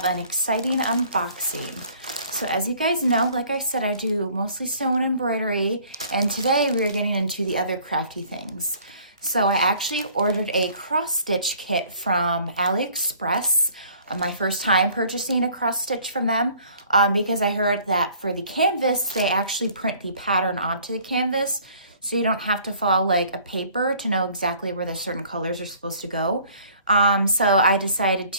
an exciting unboxing. So as you guys know, like I said, I do mostly sewing and embroidery, and today we're getting into the other crafty things. So I actually ordered a cross-stitch kit from AliExpress. My first time purchasing a cross-stitch from them. Because I heard that for the canvas, they actually print the pattern onto the canvas, so you don't have to follow like a paper to know exactly where the certain colors are supposed to go. So I decided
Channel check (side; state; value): both; inverted; correlation -0.55